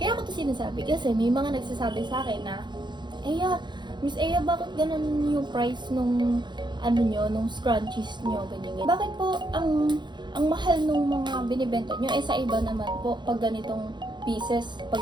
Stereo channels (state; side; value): late; left; 0.22 ms